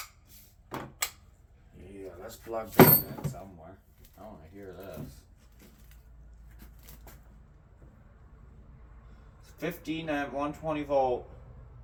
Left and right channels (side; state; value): both; identical; correlation 1.00